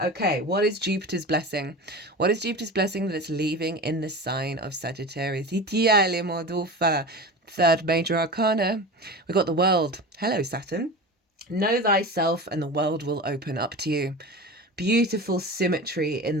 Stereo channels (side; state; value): both; normal; correlation 0.30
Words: Okay, what is Jupiter's blessing? What is Jupiter's blessing that it's leaving in the sign of Sagittarius? 3rd major arcana, we got the World. Hello, Saturn. Know thyself and the world will open up to you. Beautiful symmetry in